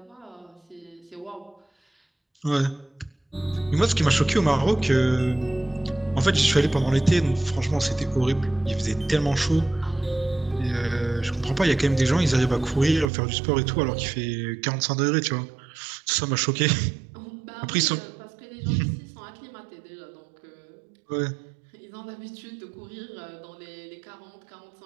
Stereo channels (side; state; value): left; drops out; at 13.1 s